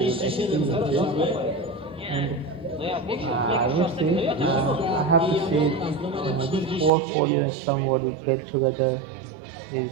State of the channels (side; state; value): left; drops out; at 6.9 s